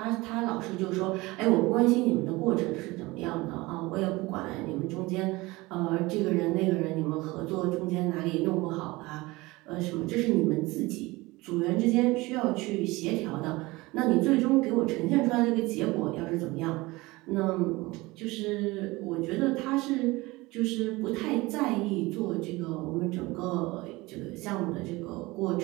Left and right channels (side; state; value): left; quieter; 21.7 dB